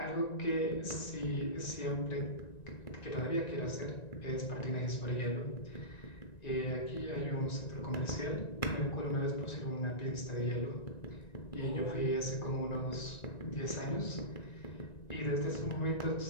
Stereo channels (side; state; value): right; late; 1.9 ms